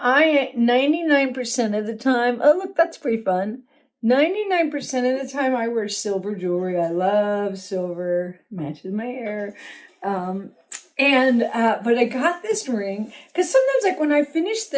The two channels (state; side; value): identical; both; correlation 1.00